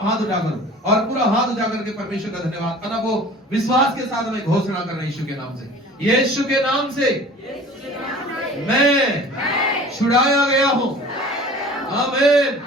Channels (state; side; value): normal; both; correlation 0.44